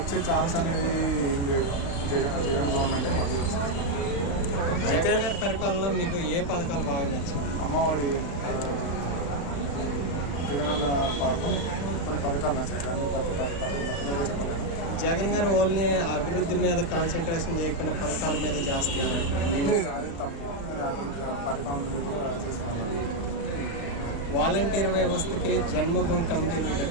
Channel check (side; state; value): right; late; 35 ms